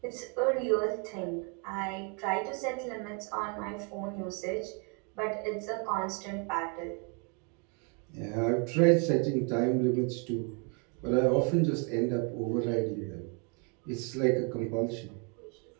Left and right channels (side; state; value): left; quieter; 35.3 dB